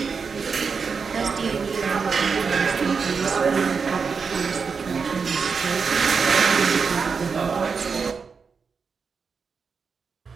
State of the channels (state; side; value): quieter; left; 5.4 dB